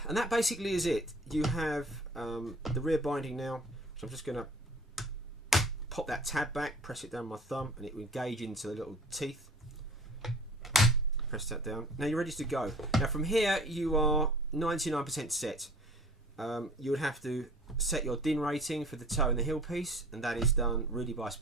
that basically is it. You have the rear binding now, so I'm just going to pop that tab back, press it down with my thumb, and it will engage into the little teeth. Press that down. Now you're ready to go. Now from here you are 99% set. You would have to set your DIN rating for the toe and the heel piece, and that is done really by a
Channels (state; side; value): normal; both; correlation 0.47